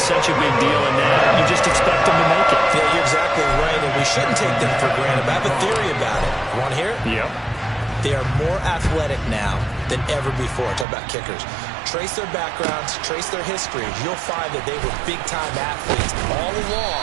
a big deal, and now you just expect them to make it. Yeah, you're exactly right, and we shouldn't take them for granted. But I have a theory about it. You want to hear it? Yep. They are more athletic now than ever before. Talk about kickers. Trace their backgrounds, trace their history. You'll find that they were big-time athletes all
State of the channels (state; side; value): drops out; left; at 10.9 s